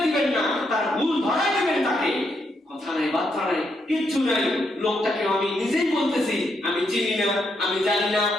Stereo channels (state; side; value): normal; both; correlation 0.78